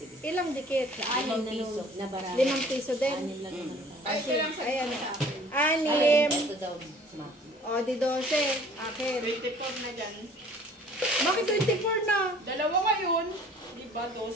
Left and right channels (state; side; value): normal; both; correlation 0.52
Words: Ilang dikit? 5 piso. 5 piso din? Ay, ito lang sa ayan. Anim. 6. Ito daw, ma. O, di 12. Akin. 24 na dyan. Bakit 24 na? Dalawa ngayon. Di ba?